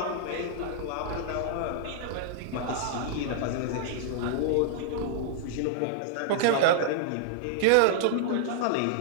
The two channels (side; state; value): both; different; correlation -0.01